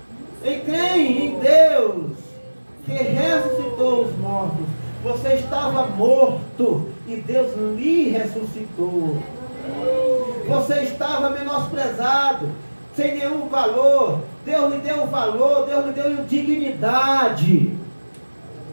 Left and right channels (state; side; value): inverted; both; correlation -1.00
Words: Em quem? Em Deus, que ressuscitou os mortos. Você estava morto e Deus lhe ressuscitou. Você estava menosprezado, sem nenhum valor. Deus lhe deu valor, Deus lhe deu dignidade.